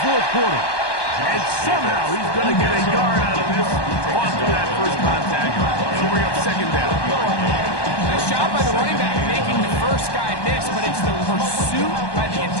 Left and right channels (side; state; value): right; late; 1.2 ms